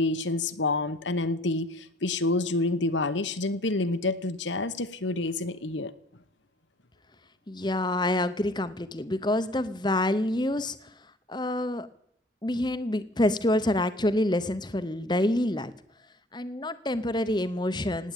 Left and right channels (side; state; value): both; normal; correlation 0.52